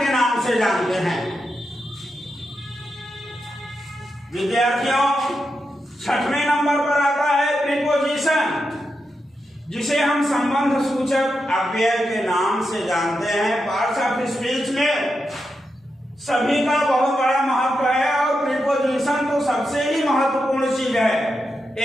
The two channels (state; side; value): normal; both; correlation 0.87